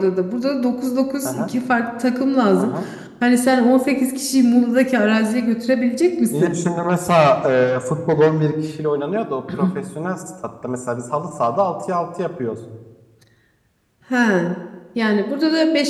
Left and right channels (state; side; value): identical; both; correlation 1.00